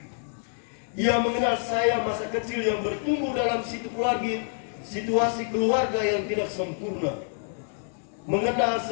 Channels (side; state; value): right; silent; digital silence